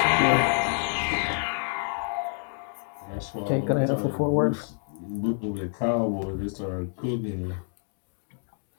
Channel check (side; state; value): right; silent; 59 dB below the other